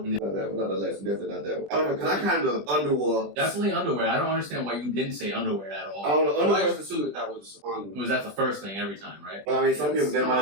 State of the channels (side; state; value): left; late; 20 ms